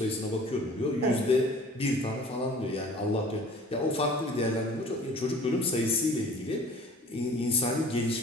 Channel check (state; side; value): normal; both; correlation 0.48